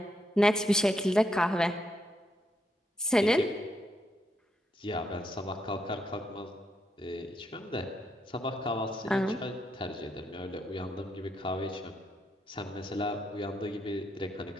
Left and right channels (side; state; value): both; normal; correlation 0.78